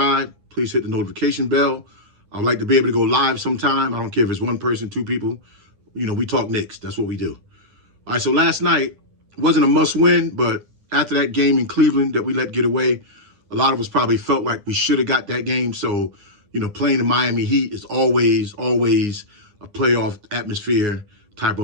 Please hit the notification bell. I'd like to be able to go live sometime. I don't care if it's one person, two people. You know, we talk Knicks. That's what we do. All right, so last night wasn't a must win, but after that game in Cleveland that we let get away, a lot of us probably felt like we should have got that game. So, you know, playing the Miami Heat is always a playoff atmosphere type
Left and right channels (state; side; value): late; left; 9.7 ms